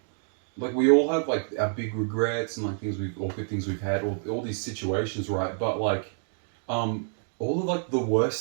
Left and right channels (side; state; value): left; silent; 59 dB below the other